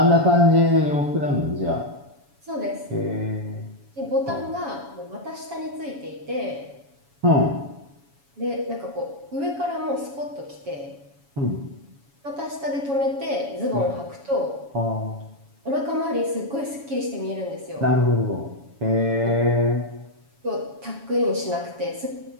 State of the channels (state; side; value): late; left; 7.1 ms